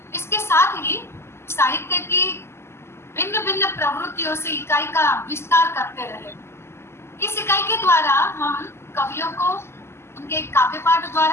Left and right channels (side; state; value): right; late; 0.12 ms